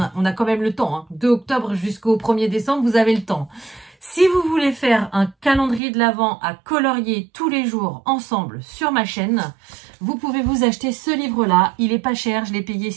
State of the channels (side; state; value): left; drops out; at 5.8 s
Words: quand même le temps. Hein, 2 octobre jusqu'au 1er décembre, vous avez le temps. Si vous voulez faire un calendrier de l'Avent à colorier tous les jours ensemble sur ma chaîne, vous pouvez vous acheter ce livre-là. Il est pas cher, je l'ai payé